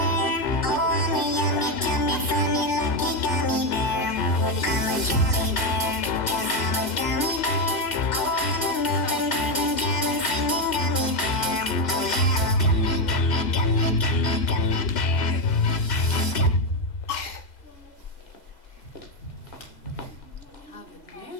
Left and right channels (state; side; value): late; right; 2.0 ms